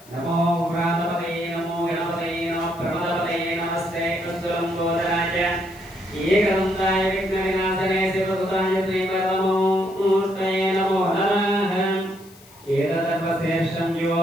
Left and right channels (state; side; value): noise; left; hiss, 24 dB below the sound